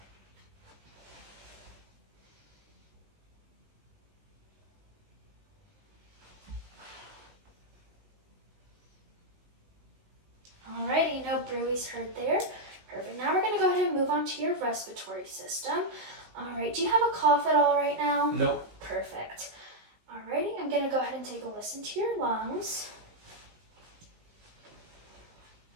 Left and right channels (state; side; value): late; left; 19 ms